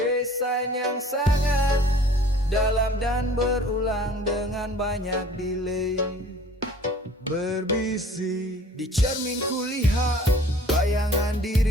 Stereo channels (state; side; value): normal; both; correlation 0.50